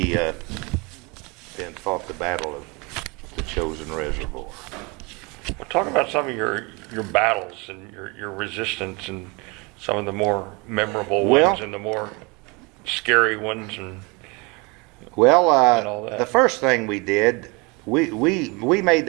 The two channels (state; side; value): quieter; left; 28.2 dB